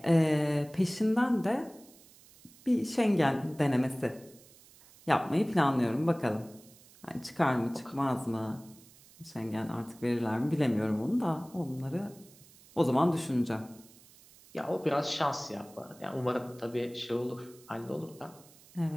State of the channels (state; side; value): noise; right; hiss, 24 dB below the sound